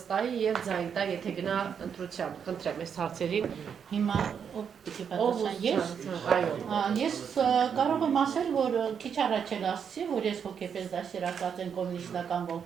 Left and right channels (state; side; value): quieter; left; 7.3 dB